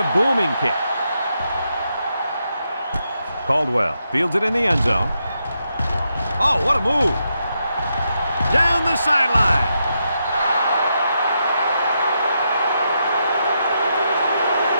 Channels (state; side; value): inverted; both; correlation -0.82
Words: booming kick. Caldwell fields it in the end zone. Oh, what a move! Down the sideline.